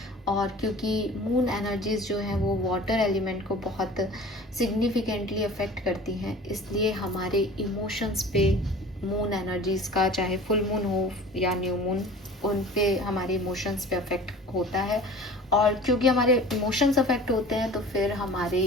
और क्योंकि मून एनर्जीज जो हैं वो वाटर एलिमेंट को बहुत सिग्निफिकेंटली अफेक्ट करती हैं, इसलिए हमारे इमोशंस पे मून एनर्जीज का, चाहे फुल मून हो या न्यू मून, उन पे हमारे इमोशंस पे अफेक्ट होता है। और क्योंकि हमारे इमोशंस अफेक्ट होते हैं तो फिर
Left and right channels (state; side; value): normal; both; correlation 0.42